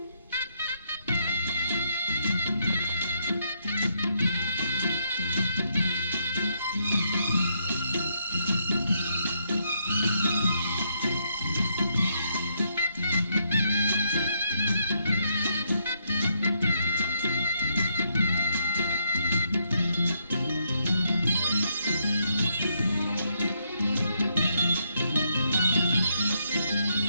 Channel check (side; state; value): both; inverted; correlation -0.75